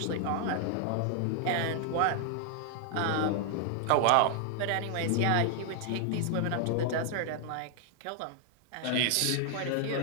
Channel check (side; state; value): both; different; correlation 0.00